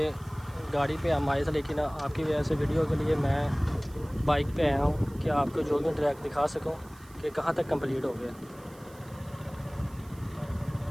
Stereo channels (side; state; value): right; noise; hiss, 25 dB below the sound